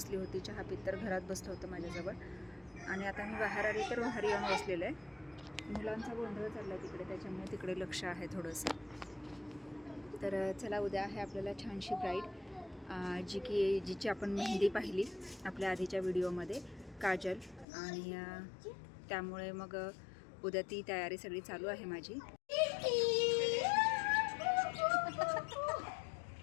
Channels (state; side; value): drops out; right; at 17.7 s